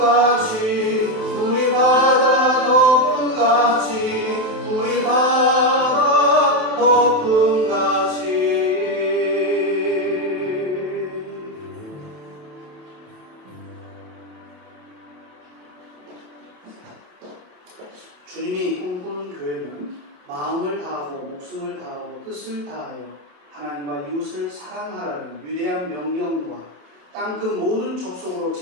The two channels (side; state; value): left; late; 27 ms